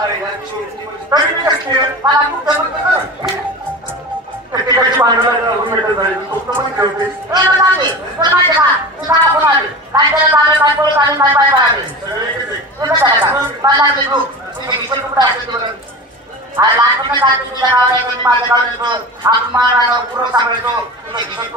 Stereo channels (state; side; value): normal; both; correlation 0.32